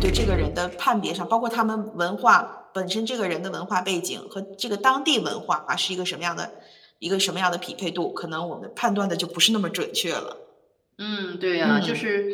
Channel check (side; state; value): both; identical; correlation 1.00